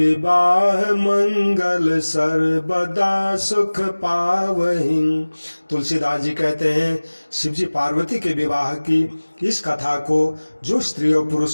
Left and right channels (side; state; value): both; inverted; correlation -1.00